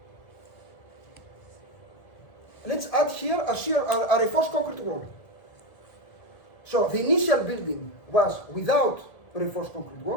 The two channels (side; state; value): right; late; 1.7 ms